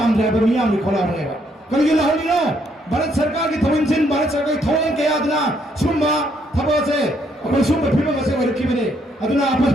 मियाम नि खोला रहेगा करिगिला होलिनो भारत सरकार की थवनसिन भारत सरकार की थवंग के यादना सुम्बा थबो से अपन सुम्बा फिल्म से वरकी बने अदुना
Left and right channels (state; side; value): normal; both; correlation 0.71